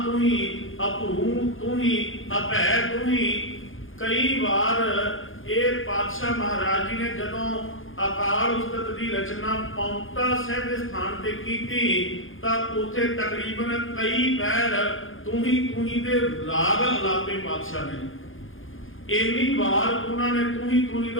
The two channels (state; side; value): late; right; 0.58 ms